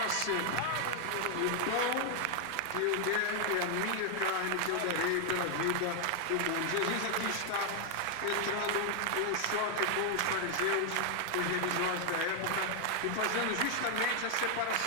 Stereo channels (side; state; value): both; different; correlation 0.00